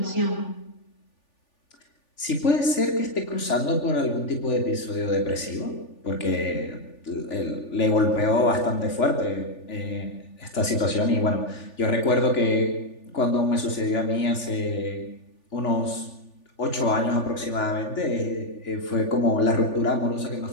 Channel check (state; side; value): late; right; 3.4 ms